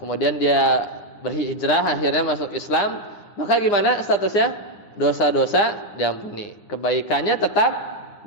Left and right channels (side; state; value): right; late; 9.8 ms